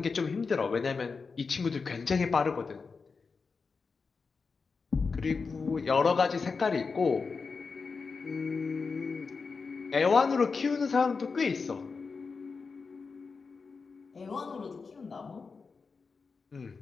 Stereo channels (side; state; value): right; quieter; 4.8 dB